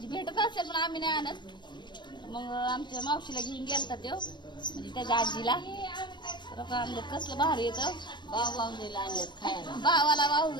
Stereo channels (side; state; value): right; late; 0.22 ms